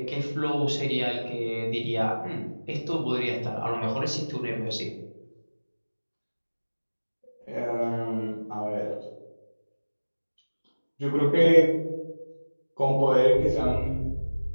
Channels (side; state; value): both; inverted; correlation -1.00